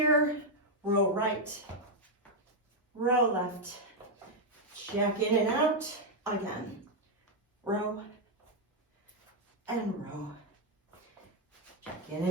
Row right, row left, jack in and out, again, row and row, jack in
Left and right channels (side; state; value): both; normal; correlation 0.00